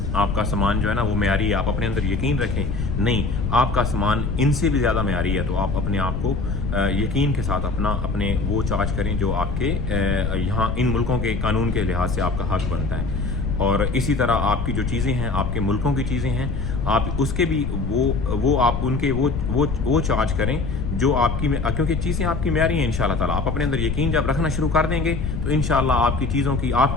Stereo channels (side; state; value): left; noise; rumble, 2 dB below the sound